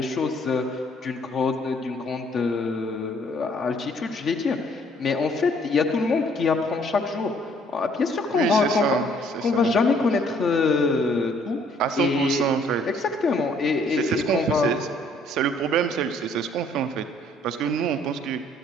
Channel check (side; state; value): both; normal; correlation 0.62